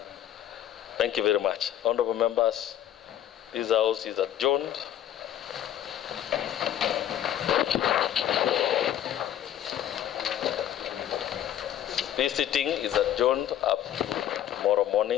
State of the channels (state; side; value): quieter; right; 11.1 dB